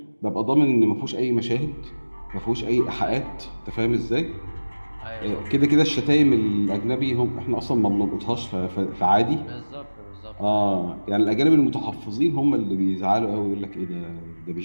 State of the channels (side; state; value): both; inverted; correlation -1.00